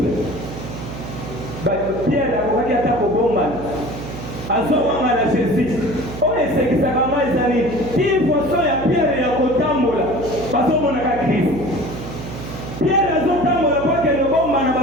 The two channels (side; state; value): right; noise; hum, 10 dB below the sound